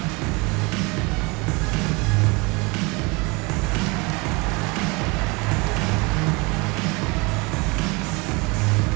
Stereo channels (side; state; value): left; quieter; 27.1 dB